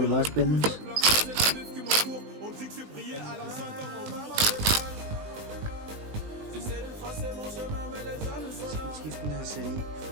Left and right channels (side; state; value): left; late; 20 ms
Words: bare spændende. Skift den her CDI.